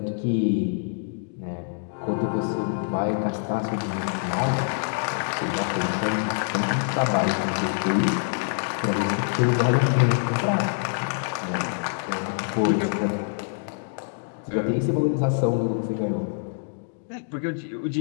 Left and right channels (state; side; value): silent; right; digital silence